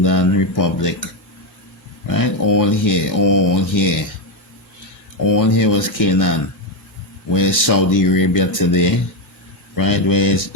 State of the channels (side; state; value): right; late; 1.7 ms